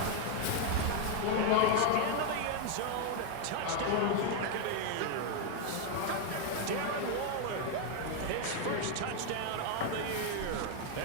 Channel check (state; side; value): different; both; correlation 0.01